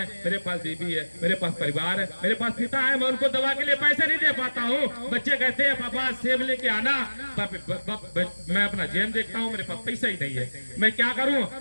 मेरे पास बीवी है, मेरे पास परिवार है, मेरे पास पिता है, मैं उनको दवा के लिए पैसे नहीं दे पाता हूँ। बच्चे कहते हैं पापा सेब लेके आना, मैं अपना जेब देखता हूँ, मेरे पास पैसा ही नहीं है, मैं क्या करूँ।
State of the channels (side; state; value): both; inverted; correlation -1.00